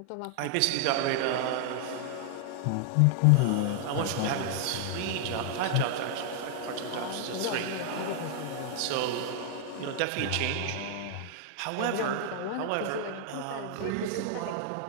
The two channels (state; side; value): different; both; correlation 0.00